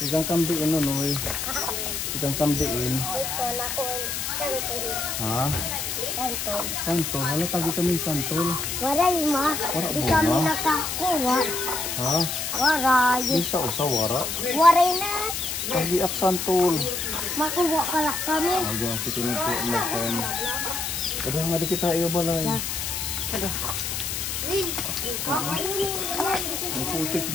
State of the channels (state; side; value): noise; left; hiss, 3 dB below the sound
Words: Igang kamdiin noy. Igang kamdiin. Ha? Santol. Hala tagi kami santol. Waray ma. Di kami nakakuha. Ha? Waray. Bisa usa wara. Waray na. Tagi ak santol. Makuha pala kami. Aga si kuno po makan. Kadang nga di kita iyo balay. Ang putik